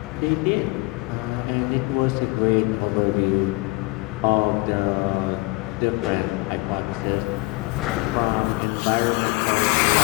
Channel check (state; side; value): quieter; right; 24.6 dB